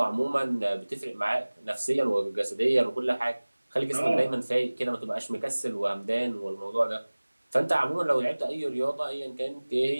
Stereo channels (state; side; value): inverted; both; correlation -1.00